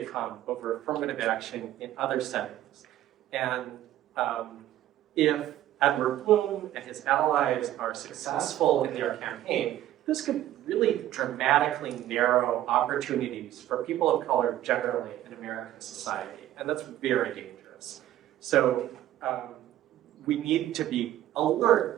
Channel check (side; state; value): left; quieter; 13.2 dB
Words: come over affirmative action in other settings. And if Edward Bloom and his allies are successful in their campaign, this could really dramatically narrow opportunities for people of color generally in American society, and that's very dangerous. So we need to be